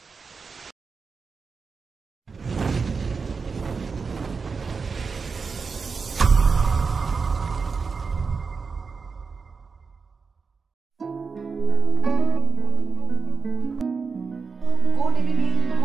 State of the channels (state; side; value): quieter; left; 5.1 dB